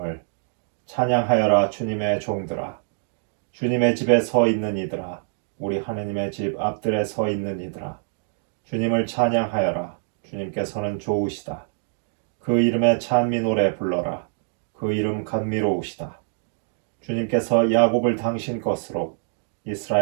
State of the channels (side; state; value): left; silent; digital silence